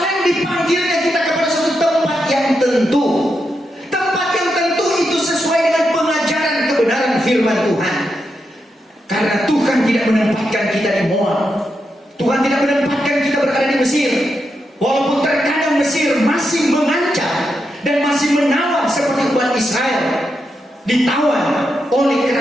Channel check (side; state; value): both; normal; correlation 0.85